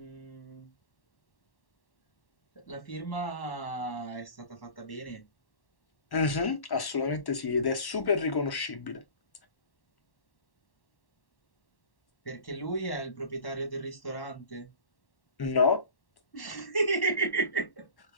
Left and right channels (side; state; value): right; late; 1.1 ms